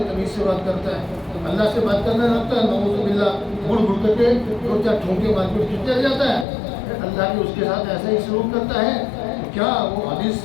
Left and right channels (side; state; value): right; drops out; at 6.5 s